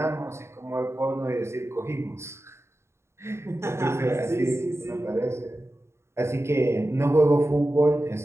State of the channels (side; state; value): left; late; 0.13 ms